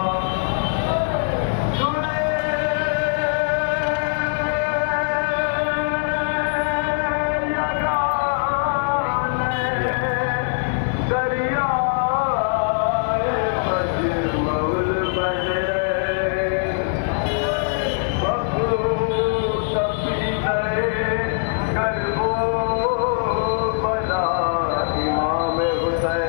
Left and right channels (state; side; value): silent; right; digital silence